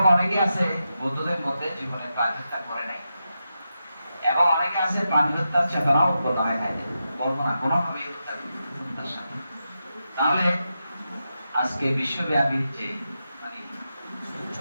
অনেকে আছে বৌদ্ধদের মধ্যে জীবনে প্রাণী হত্যা করে নাই, এবং অনেকে আছে প্রাণী হত্যার চেতনাও প্রদানে খাইতে বলবো না কোনোভাবে হত্যার সাথে। তাহলে আজকে বিশ্বব্যাপী যে মানে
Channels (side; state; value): both; inverted; correlation -0.88